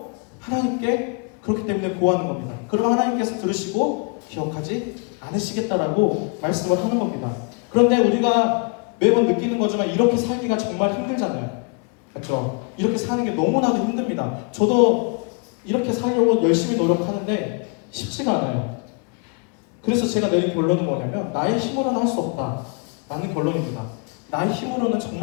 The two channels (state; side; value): quieter; right; 36.0 dB